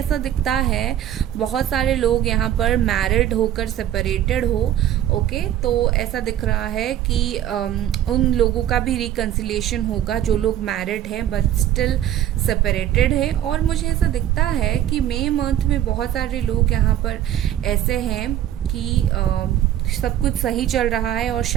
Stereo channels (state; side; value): quieter; left; 11.6 dB